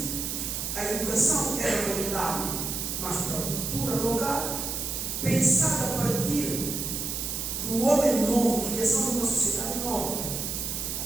a educação era voltada mais para a cultura local, pensada a partir do homem novo, criação de uma sociedade nova.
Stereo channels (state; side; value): noise; right; hiss, 3 dB below the sound